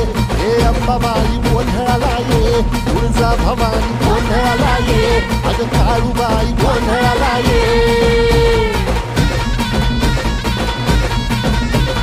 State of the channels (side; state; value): both; identical; correlation 1.00